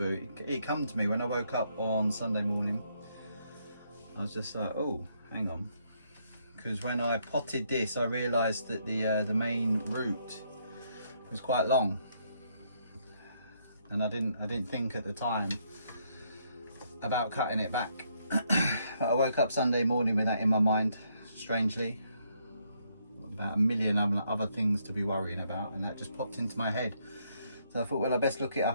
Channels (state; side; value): inverted; both; correlation -0.73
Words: It come to me when I woke up on Sunday morning. I was just like, oh, hang on, because when I potted this, I realised that the main root was quite long, and I didn't think at the time about cutting it back. But I woke up Sunday morning with that in my mind, strangely, about a million other things to be worrying about, and that just popped into my head. So I thought, well, I best look it